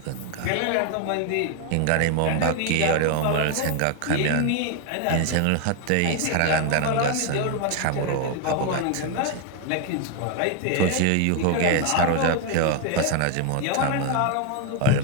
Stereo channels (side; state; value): both; different; correlation 0.01